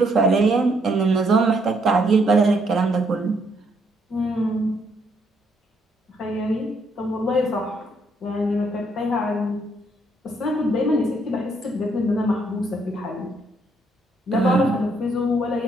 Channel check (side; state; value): both; normal; correlation 0.72